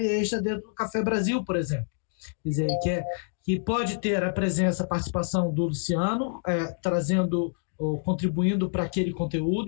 extra dentro do Café Brasil, por exemplo. Quer dizer, que pode ter a presença, a participação do Luciano, trazendo ou contribuindo para aquele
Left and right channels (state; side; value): silent; right; digital silence